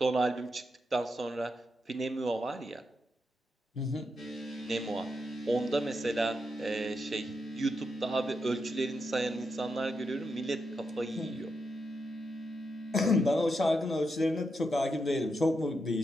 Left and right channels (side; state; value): both; normal; correlation 0.84